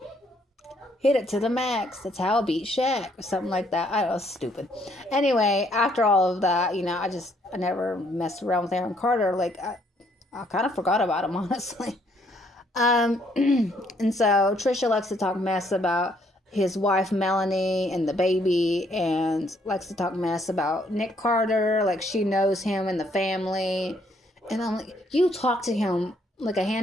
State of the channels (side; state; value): both; normal; correlation 0.68